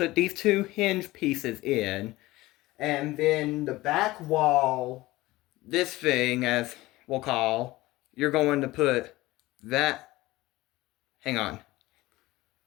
these two hinge pieces in. And then the back wall, this thing, as we'll call, you're going to put that. Hang on.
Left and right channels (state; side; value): quieter; right; 18.8 dB